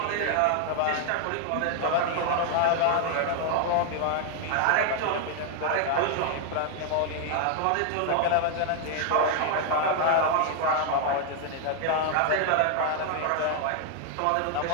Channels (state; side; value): different; both; correlation 0.00